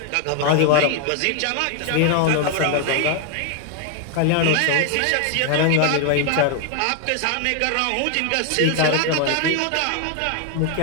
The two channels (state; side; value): different; both; correlation 0.01